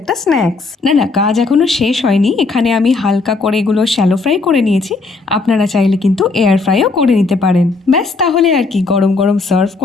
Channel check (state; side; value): quieter; right; 3.8 dB